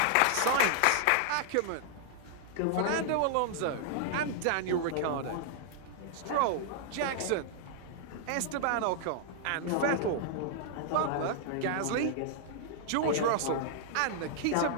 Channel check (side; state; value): both; different; correlation -0.01